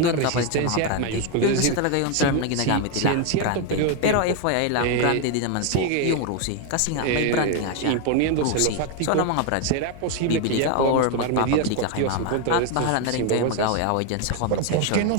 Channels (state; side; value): different; both; correlation 0.01